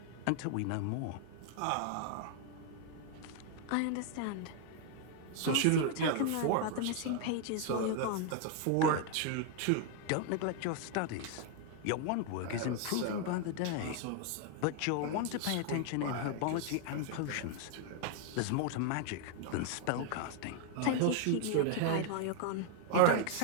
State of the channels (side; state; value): both; different; correlation 0.00